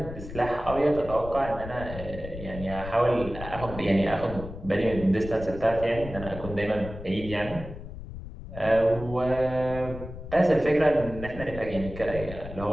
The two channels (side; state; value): left; noise; rumble, 11 dB below the sound